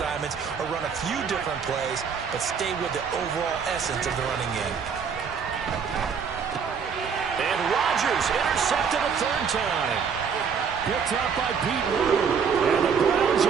or run a few different plays, but stay with the overall essence of the running game. And Rodgers intercepted a third time. Picked up by Pete Wood. And the Browns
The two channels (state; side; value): quieter; left; 6.4 dB